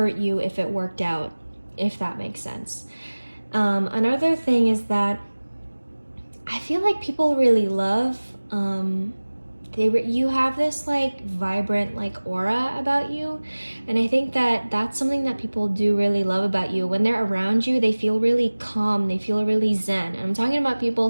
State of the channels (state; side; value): inverted; both; correlation -1.00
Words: you if it worked out, if that makes sense. Another thing is that I feel like people really love, you have this like vibrant like aura about you, and I think that that's something that people do really love about you. When they're around you, they feel really calm, they feel really zen. And I'm talking about people